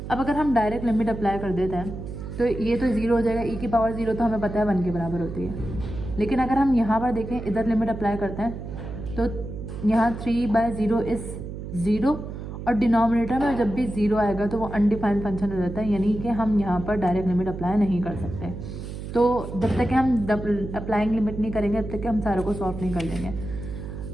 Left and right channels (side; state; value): right; noise; hum, 8 dB below the sound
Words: अब अगर हम डायरेक्ट लिमिट अप्लाई कर देते हैं तो ये तो 0 हो जाएगा, e की पावर 0 तो हमें पता है 1 के बराबर होती है। लेकिन अगर हम यहाँ पर देखें, इधर लिमिट अप्लाई करते हैं तो यहाँ 3/0 इज़ 0 और डिनोमिनेटर में जब भी 0 आएगा तो वो अनडिफाइंड फंक्शन हो जाता है, यानी कि हम यहाँ पर डायरेक्ट लिमिट अप्लाई नहीं कर सकते। तो जब तक कि हम अप्लाइंग लिमिट नहीं करेंगे तब तक कि हम सारों को सॉल्व नहीं कर लेंगे।